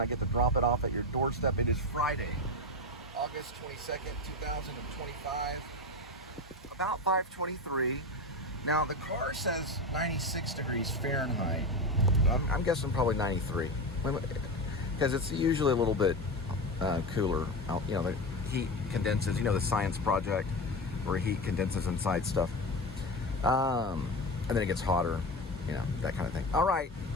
I get to drop it off at your doorstep. It is Friday, August 22nd, 2025, about 5:23. Now the car says 96 degrees Fahrenheit. I'm guessing probably 93, because it's usually a little bit cooler out. You know, the heat condenses. You know, the science project where heat condenses inside stuff, and then it gets hotter. You know, that kind of thing. All right,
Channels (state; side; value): normal; both; correlation 0.21